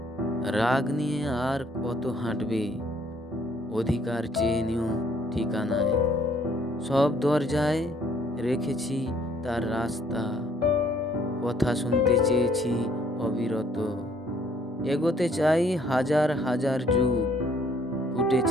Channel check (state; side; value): normal; both; correlation 0.63